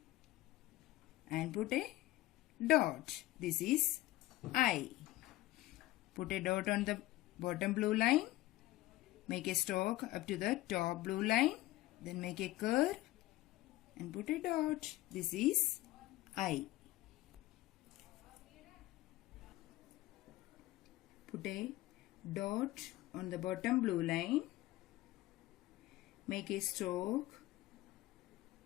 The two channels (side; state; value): right; quieter; 17.2 dB